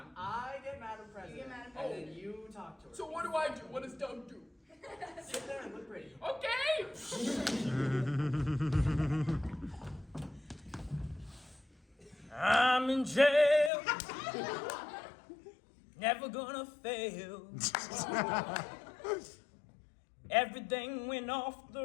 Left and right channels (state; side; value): drops out; right; at 13.7 s